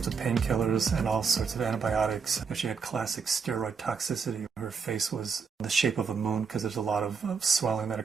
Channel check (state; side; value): quieter; left; 5.8 dB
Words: of painkillers and all sorts of antibiotics. She had classic steroid toxicity. Her face was the shape of a moon because there's a lot of swelling that